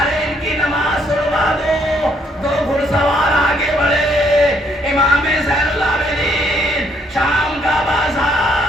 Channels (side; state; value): both; normal; correlation 0.70